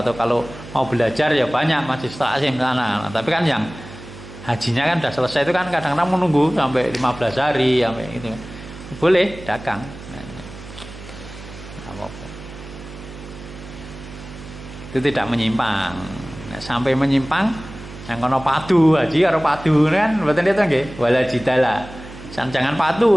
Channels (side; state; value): right; noise; hum, 15 dB below the sound